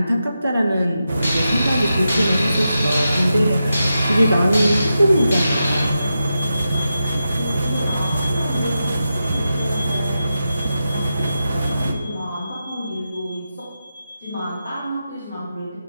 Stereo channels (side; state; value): both; inverted; correlation -0.88